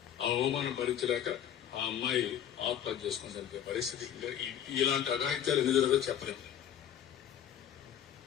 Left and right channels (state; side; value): quieter; right; 9.9 dB